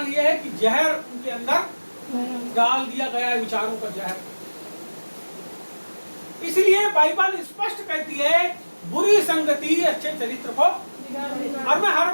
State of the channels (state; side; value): inverted; both; correlation -1.00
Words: यह है कि जहर उनके अंदर डाल दिया गया है, विचारों का जहर। इसलिए बाइबल स्पष्ट कहती है बुरी संगति अच्छे चरित्र को, और मैं हर